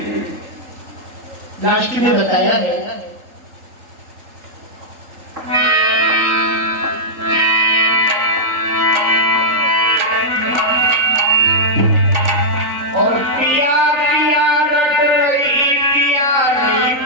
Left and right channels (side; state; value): left; late; 3.8 ms